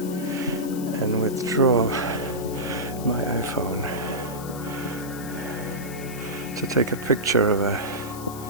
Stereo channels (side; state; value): left; noise; hiss, 14 dB below the sound